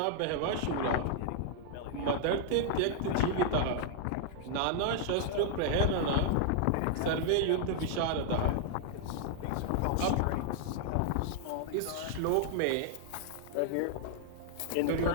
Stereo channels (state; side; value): different; both; correlation -0.01